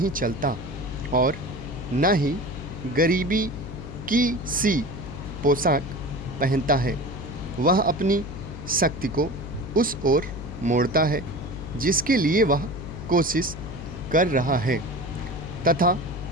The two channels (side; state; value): left; noise; hum, 10 dB below the sound